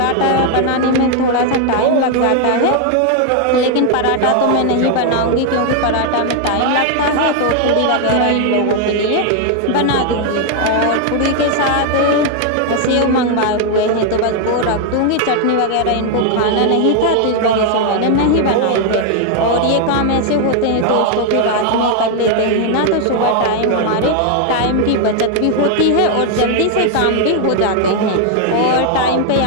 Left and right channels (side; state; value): both; different; correlation 0.00